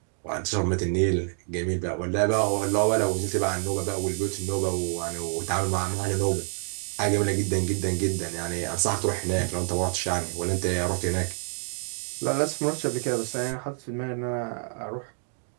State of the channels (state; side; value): silent; left; 60 dB below the other